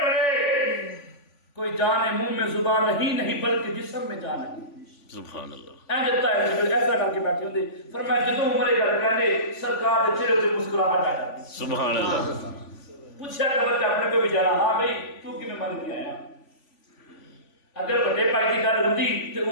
کوئی جانے منہ میں زبان نہیں بلکہ جسم میں جان نہیں سبحان اللہ ایسا کر کے بیٹھے ہوتے فرمایا جدوں عمر گل کہنے سرکار دے چہرے تے مسکراہٹ آ جاتی سبحان اللہ پوچھا قبر تے اپنے کو بھی جانا ہاں بھائی تو کیویں من کے آیا اگر بڑے بھائی کی گل ہوندی تے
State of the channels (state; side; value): late; right; 3.5 ms